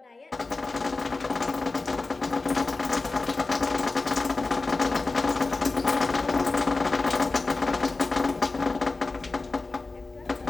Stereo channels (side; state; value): right; quieter; 3.6 dB